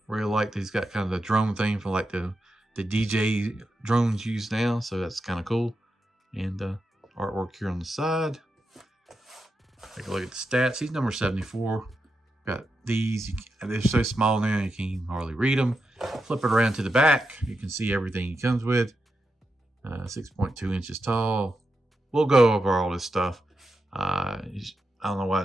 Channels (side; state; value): both; normal; correlation 0.87